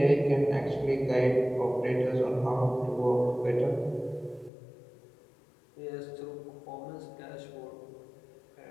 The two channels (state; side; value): drops out; right; at 4.5 s